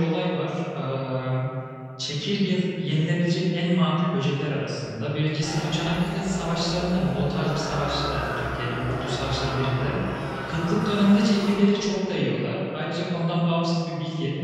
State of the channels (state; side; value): identical; both; correlation 1.00